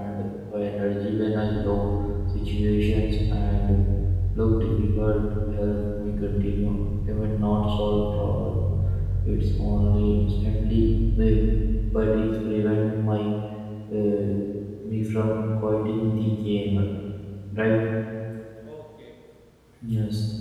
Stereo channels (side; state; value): both; identical; correlation 1.00